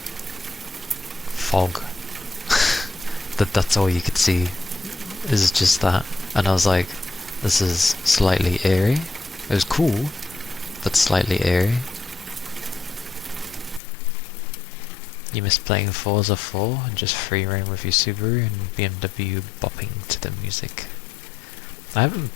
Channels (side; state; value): right; drops out; at 13.8 s